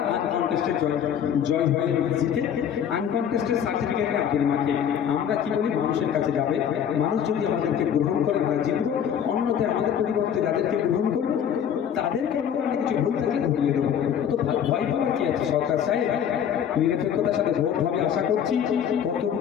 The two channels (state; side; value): quieter; right; 8.8 dB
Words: আনকনটেস্টেড জয় হয়ে জিতে আনকনটেস্টেড সার্টিফিকেট আগের মাঠে। আমরা কি বলি, মানুষের কাছে যাবে, মানুষ যদি আমাদেরকে গ্রহণ করে আমরা জিতবো। অন্যতে আমাদের পরিবর্তে যাদেরকে গ্রহণ করবো তাদের কর্মকাণ্ডে কিছু ভুল থাকলে ধরিয়ে দেবো। তো ভয় পাওয়ার কি আছে? সরকার সাহেব নিরপেক্ষতার সাথে ভোট হবে আশা করছি। কত